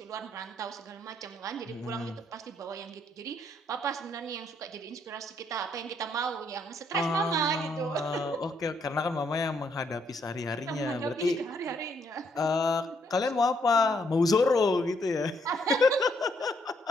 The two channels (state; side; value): normal; both; correlation 0.72